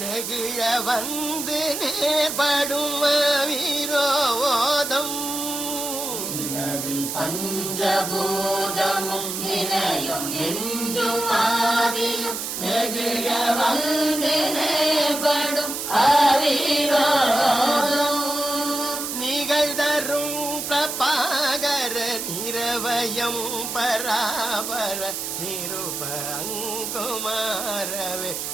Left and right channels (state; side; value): noise; right; hiss, 4 dB below the sound